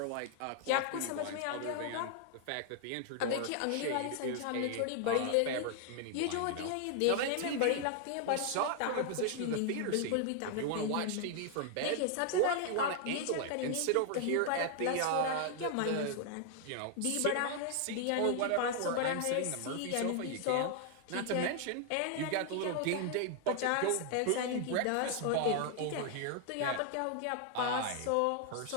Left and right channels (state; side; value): different; both; correlation 0.00